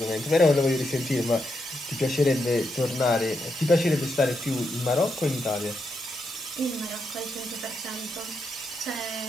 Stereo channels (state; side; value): normal; both; correlation 0.82